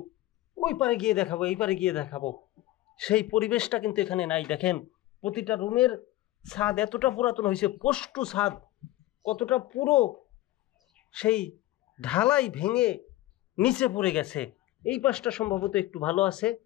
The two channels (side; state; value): right; quieter; 16.2 dB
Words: ওই পারে গিয়ে দেখাবো, এই পারে গিয়ে দেখাবো, সেই পরিবেশটা কিন্তু এখানে নাই। দেখেন প্রতিটা রুমের ছাদ এতটা পুরাতন হয়েছে, পষ্টু ছাদ কতটা পুরো সেই ঢালাই ভেঙে নিচে পড়ে গেছে। এই পাশটা সম্ভবত একটু ভালো আছে,